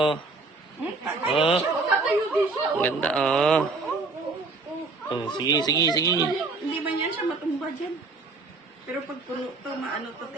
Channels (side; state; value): left; quieter; 3.8 dB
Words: Oh, Tatayo din siya. ang ganda oh. Oh, sige, sige, sige. Hindi ba niyan siya matumba dyan? Pero pag puno to, maano to, te,